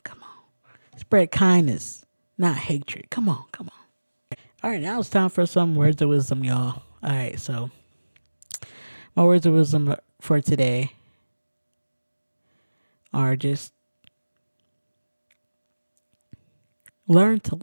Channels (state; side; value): inverted; both; correlation -1.00